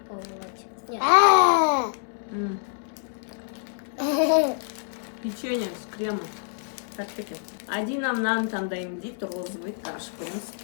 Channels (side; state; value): right; silent; 60 dB below the other